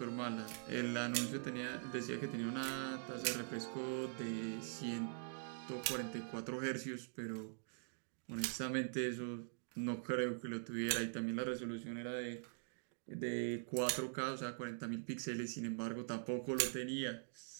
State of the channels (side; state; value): left; silent; digital silence